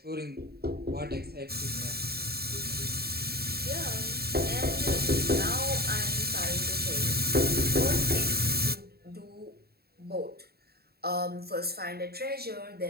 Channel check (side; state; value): left; late; 0.46 ms